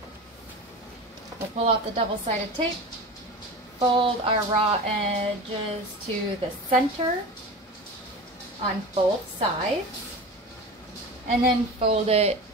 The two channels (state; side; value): normal; both; correlation 0.31